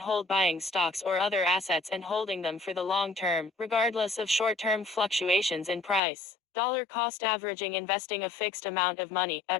hold: buying stocks or other assets and holding them for the long term, regardless of short-term fluctuations in price. Dollar cost averaging: investing a fixed amount of money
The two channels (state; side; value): drops out; right; at 6.0 s